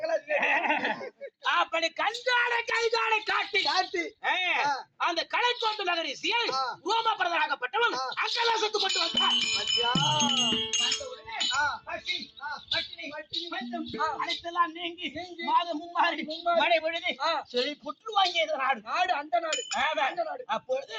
அப்படி கஞ்சாடை கைதாடை காட்டி அந்த கலைக்கோட்டு நகரிசியை ரோமபரதனாகப்பட்டவன் அங்கலாசத்து கொண்டு வந்தான். வந்த உடனே பசி, பட்டினி, பஞ்சம் அனைத்தெல்லாம் நீங்கி மாதம் மும்மாறி மழை பொழுது செழி புற்று வாங்கியது நாடு. அந்த நாடு. அப்பொழுது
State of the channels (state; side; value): identical; both; correlation 1.00